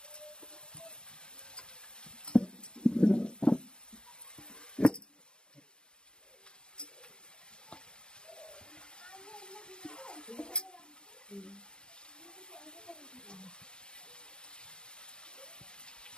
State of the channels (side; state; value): right; late; 0.050 ms